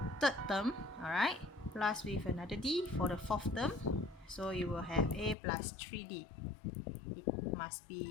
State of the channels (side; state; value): right; drops out; at 5.4 s